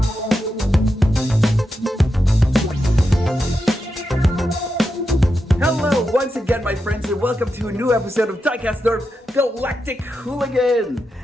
Once again, my friends, and welcome to a new episode of Diecast North Galactic Hooligan.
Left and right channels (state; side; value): normal; both; correlation 0.87